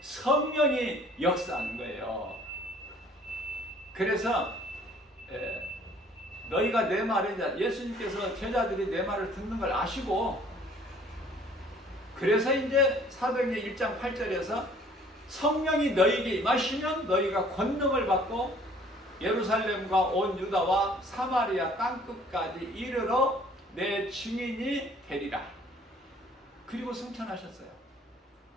성령이 역사하는 거예요. 그래서 너희가 내 말을, 예수님께서 제자들이 내 말을 듣는 걸 아시고, 그래서 이제 사도행전 1장 8절에서 성령이 너희에게 임하시면 너희가 권능을 받고 예루살렘과 온 유다와 사마리아 땅끝까지 이르러 내 증인이 되리라. 그리고 승천하셨어요.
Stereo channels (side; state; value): both; normal; correlation 0.56